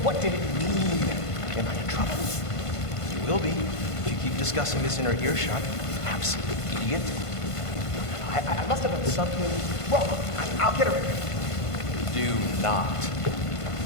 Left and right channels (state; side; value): late; right; 1.5 ms